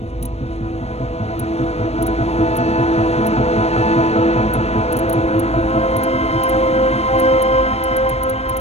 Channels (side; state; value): right; late; 0.31 ms